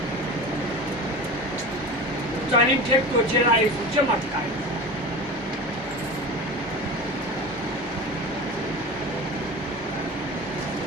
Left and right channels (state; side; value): normal; both; correlation 0.31